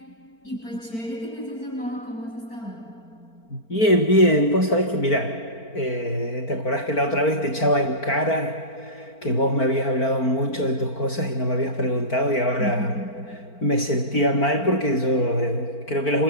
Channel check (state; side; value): late; right; 4.4 ms